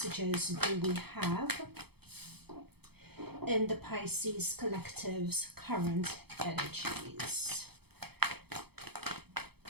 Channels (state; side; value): late; left; 0.97 ms